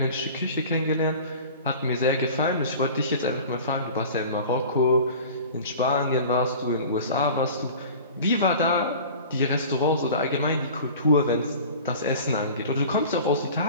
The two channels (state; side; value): inverted; both; correlation -0.41